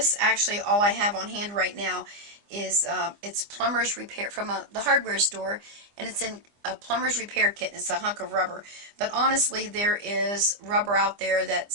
actually, all I have on hand right now is, it's plumber's repair from the hardware store, and it's in a plumber's repair kit, and it's a hunk of rubber. But honestly, there is rubber out there that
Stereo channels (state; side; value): late; left; 25 ms